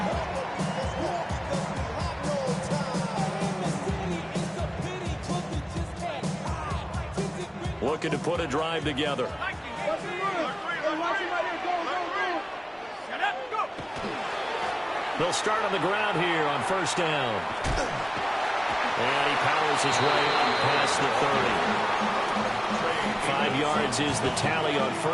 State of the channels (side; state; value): both; identical; correlation 1.00